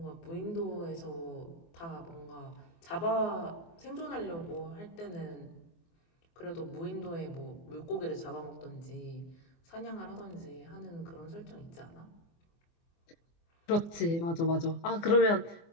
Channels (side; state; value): right; late; 24 ms